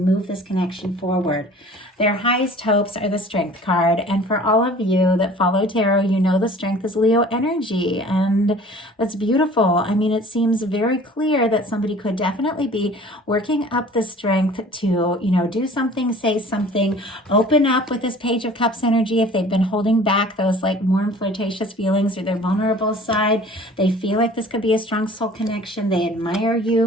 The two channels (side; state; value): both; normal; correlation 0.47